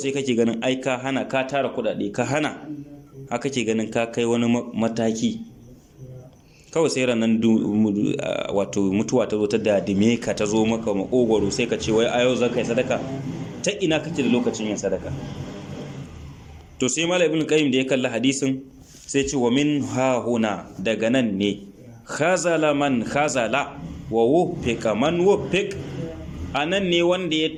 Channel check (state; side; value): identical; both; correlation 1.00